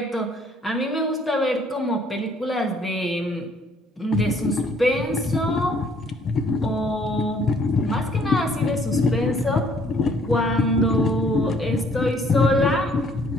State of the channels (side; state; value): both; normal; correlation 0.62